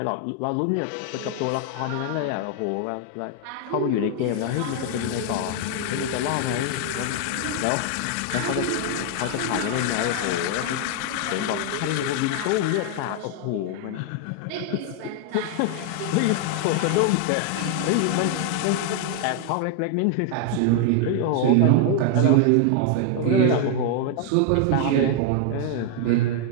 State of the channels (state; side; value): different; both; correlation 0.00